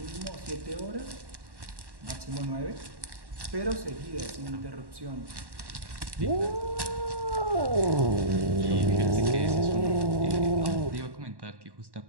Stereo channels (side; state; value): left; late; 1.1 ms